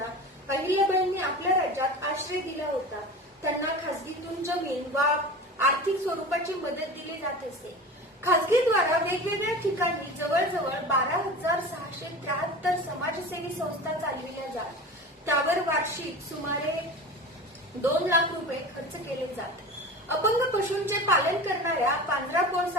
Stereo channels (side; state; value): both; normal; correlation 0.33